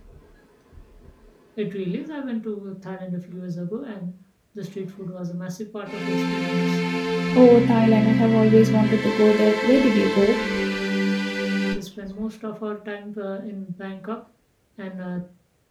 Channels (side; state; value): both; identical; correlation 1.00